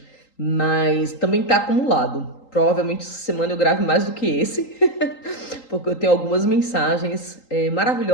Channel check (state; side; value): late; right; 3.8 ms